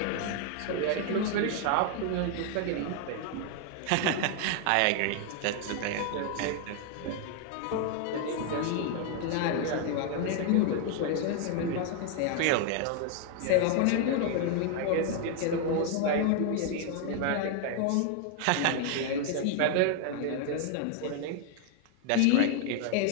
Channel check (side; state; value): both; different; correlation 0.00